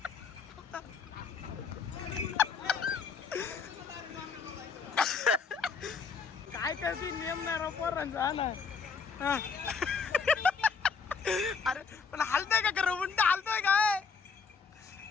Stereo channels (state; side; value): quieter; right; 5.4 dB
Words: काय करतील नियम नाही राव पोरांचा हा ना हा. अरे पण हलतोय का खरं उंट हलतोय